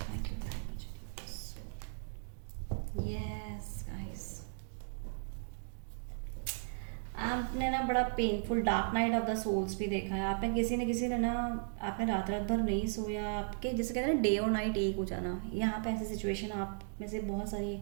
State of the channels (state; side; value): silent; left; digital silence